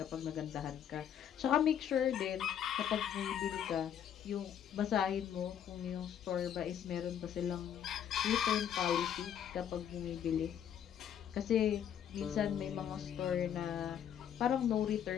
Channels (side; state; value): right; quieter; 9.3 dB